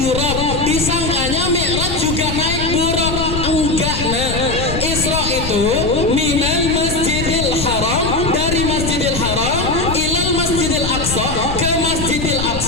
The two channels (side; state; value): left; noise; rumble, 5 dB below the sound